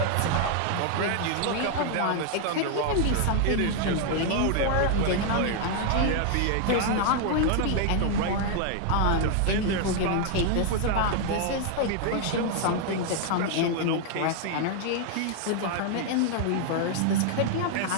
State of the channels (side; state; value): both; different; correlation 0.00